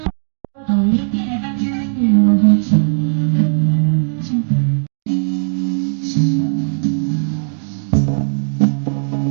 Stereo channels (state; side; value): silent; left; digital silence